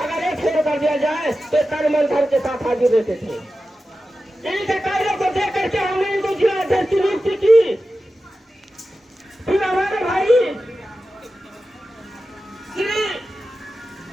एक फेर कर दिया जाए तो तन मन धन के साथ हाजिर रहते थे। इनके कार्यों को देख करके हमने इनको जिला अध्यक्ष की नियुक्ति की। फिर हमारे भाई श्री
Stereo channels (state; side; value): normal; both; correlation 0.93